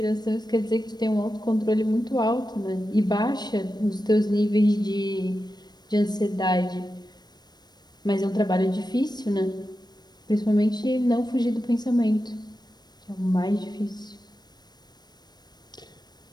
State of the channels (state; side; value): late; right; 0.20 ms